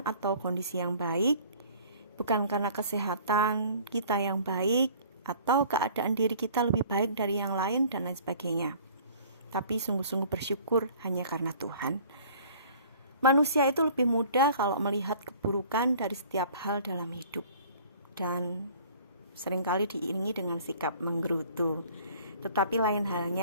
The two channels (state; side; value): inverted; both; correlation -0.50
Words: atau kondisi yang baik, bukan karena kesehatan kita yang baik, atau keadaan diri kita lebih baik dari yang lain dan lain sebagainya. Tapi sungguh-sungguh bersyukur hanya karena Tuhan. Manusia itu lebih mudah kalau melihat keburukan dari setiap hal dalam hidup, dan seringkali diiringi dengan sikap menggerutu. Tetapi lain